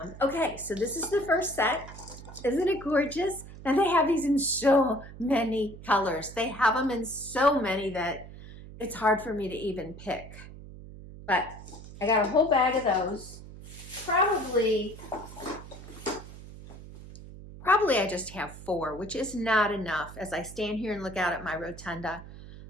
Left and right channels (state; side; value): noise; right; hum, 15 dB below the sound